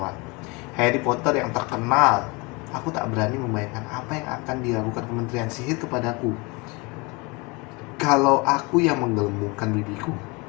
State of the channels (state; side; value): quieter; right; 27.4 dB